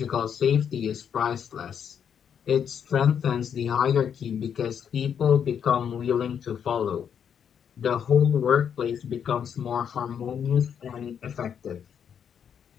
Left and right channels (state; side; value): quieter; right; 8.0 dB